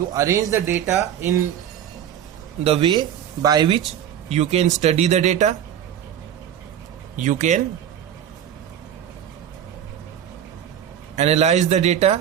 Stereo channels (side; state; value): left; quieter; 9.9 dB